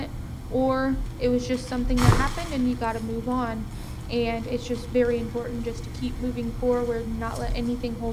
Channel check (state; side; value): identical; both; correlation 1.00